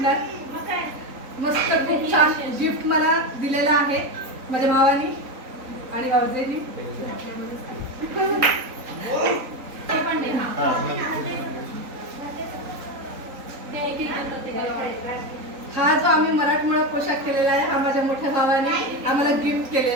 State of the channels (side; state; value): left; late; 3.9 ms